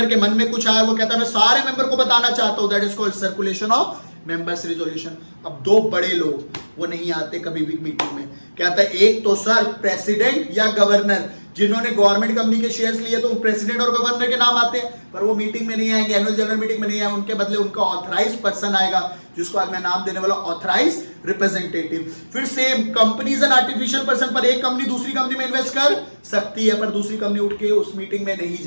के मन में कुछ आया, वो कहता मैं सारे मेंबर को बताना चाहता हूं, that is called circulation of members resolution. अब 2 बड़े लोग वो नहीं आते कभी भी मीटिंग में। कहता है एक तो सर प्रेसिडेंट या गवर्नर, जिन्होंने गवर्नमेंट कंपनी के शेयर्स लिए तो प्रेसिडेंट और गवर्नर के नाम आते हैं, पर वो मीटिंग में नहीं आएंगे, एनुअल जनरल मीटिंग में नहीं आएंगे, उनके बदले उनका ऑथराइज पर्सन आएगा, जिसको आज मैं नाम देने वाला ऑथराइज रिप्रेजेंटेटिव। फिर same companies and artificial person, पर एक कंपनी दूसरी कंपनी में इन्वेस्ट कर सकती है पर दूसरी कंपनी उठ के उस मीटिंग में नहीं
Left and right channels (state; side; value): inverted; both; correlation -1.00